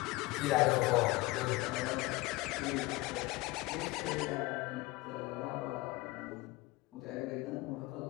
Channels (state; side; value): quieter; right; 20.9 dB